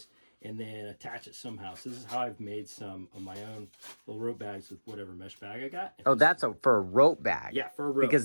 and then attach it somehow. So this is how I've made some of my own little rope bags with whatever mesh bag I got. Oh, that's for a rope bag. Yeah, for a rope.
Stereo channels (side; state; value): both; inverted; correlation -1.00